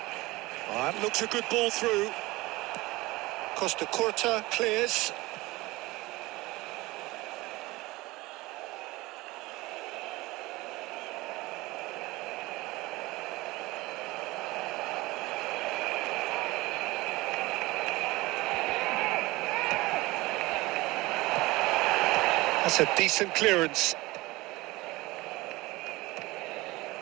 Oh, that looks a good ball through. Costa Curta clears. That's a decent clearance.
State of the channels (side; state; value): left; quieter; 20.7 dB